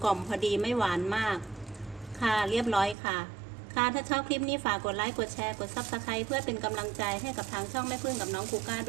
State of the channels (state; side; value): drops out; left; at 3.0 s